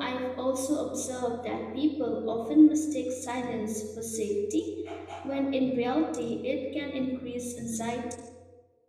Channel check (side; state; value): both; identical; correlation 1.00